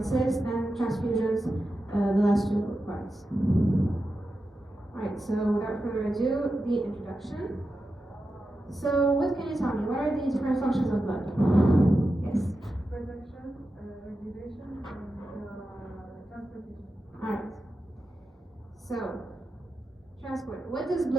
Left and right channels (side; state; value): both; normal; correlation 0.90